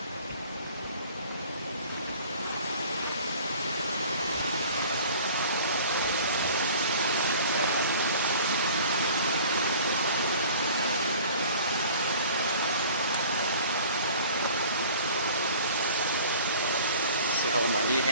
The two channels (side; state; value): both; inverted; correlation -0.47